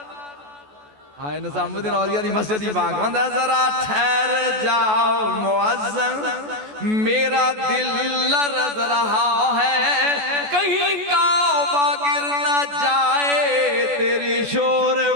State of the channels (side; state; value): left; late; 14 ms